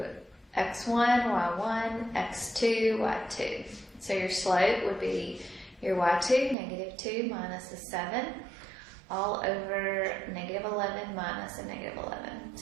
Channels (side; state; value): left; drops out; at 6.6 s